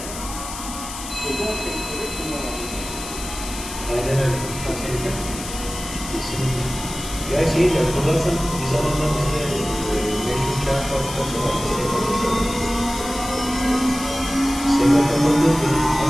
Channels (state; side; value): noise; left; hiss, 10 dB below the sound